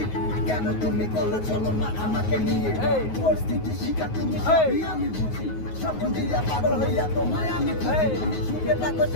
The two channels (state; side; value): late; right; 9.4 ms